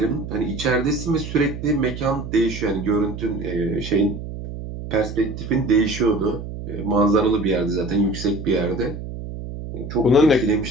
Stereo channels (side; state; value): right; noise; hum, 9 dB below the sound